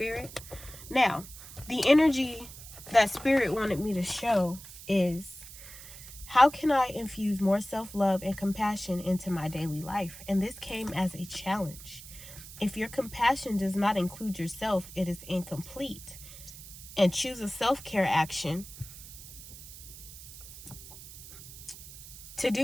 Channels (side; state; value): right; noise; hiss, 15 dB below the sound